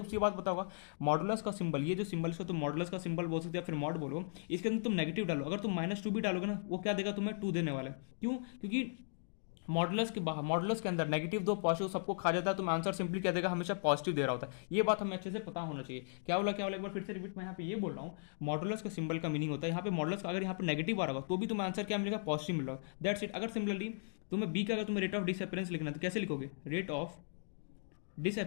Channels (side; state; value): right; silent; digital silence